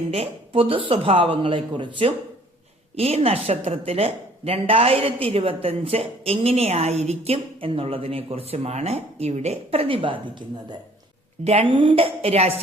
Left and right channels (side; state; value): both; normal; correlation 0.57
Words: പൊതു സ്വഭാവങ്ങളെക്കുറിച്ചും ഈ നക്ഷത്രത്തില് 2025 എങ്ങനെയായിരിക്കും എന്നുള്ളതിനെ കുറിച്ചുമാണ് ഇവിടെ പ്രതിപാദിക്കുന്നത്. 2